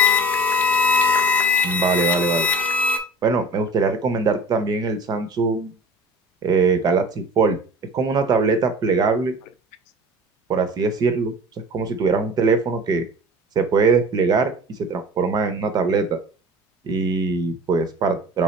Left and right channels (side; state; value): both; normal; correlation 0.40